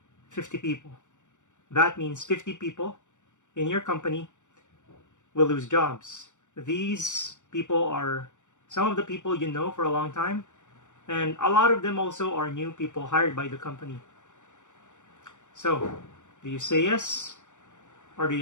50 people. That means 50 people in your company will lose jobs. These people are some of the people you know for a long time, and a lot of them also are new people hired by the company. So, do you say yes or do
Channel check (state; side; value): late; right; 0.85 ms